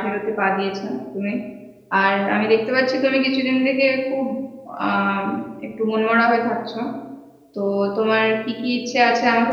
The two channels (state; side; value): identical; both; correlation 1.00